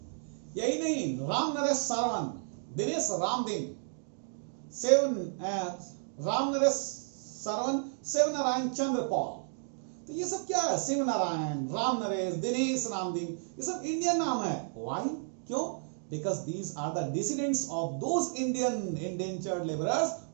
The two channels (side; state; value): left; silent; digital silence